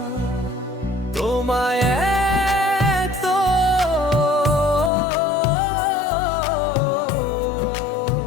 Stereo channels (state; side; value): drops out; right; at 4.9 s